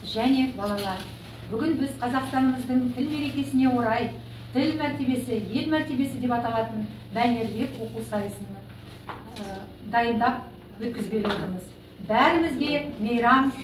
және балалар. Бүгін біз Қазақстанымыздың тіл мерекесіне орай тіл мәртебесі, ел мәртебесі деп аталатын мәнерлеп оқу сайысын дайындап өткізбек отырмыз. Бәрімізге мейрам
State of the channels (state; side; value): identical; both; correlation 1.00